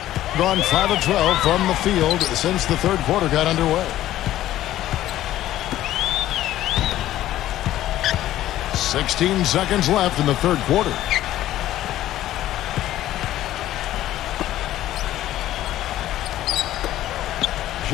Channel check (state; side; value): quieter; right; 13.7 dB